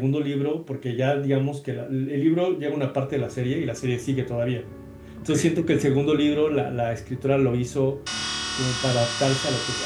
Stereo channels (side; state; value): both; identical; correlation 1.00